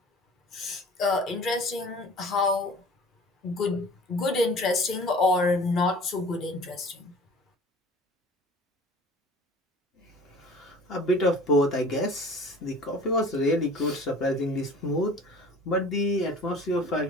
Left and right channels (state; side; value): normal; both; correlation 0.45